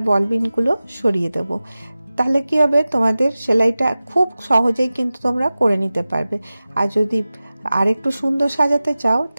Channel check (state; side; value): inverted; both; correlation -0.96